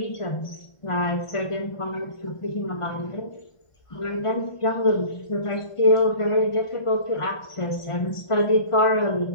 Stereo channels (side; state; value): right; late; 1.4 ms